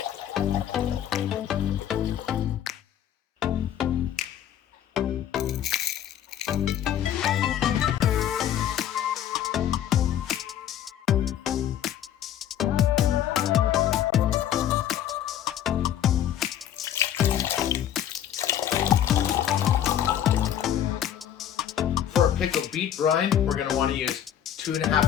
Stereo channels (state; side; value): quieter; right; 10.5 dB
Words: Pickled beet brine, we're going to want to use